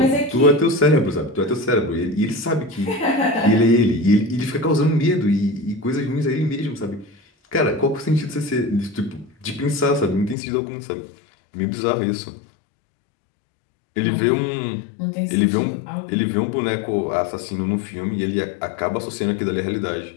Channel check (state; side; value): drops out; right; at 10.4 s